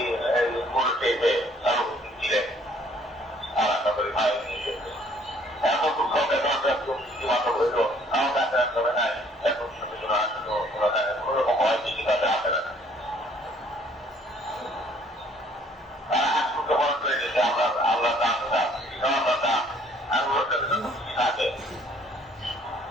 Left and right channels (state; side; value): normal; both; correlation 0.60